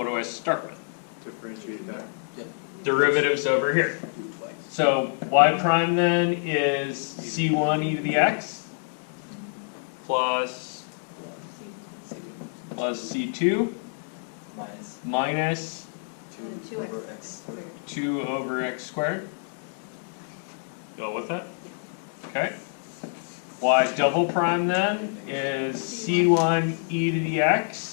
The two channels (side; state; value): right; silent; digital silence